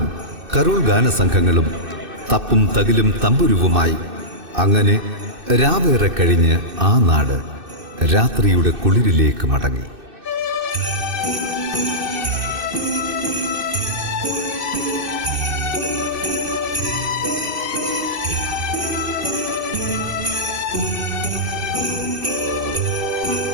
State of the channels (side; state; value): left; late; 2.6 ms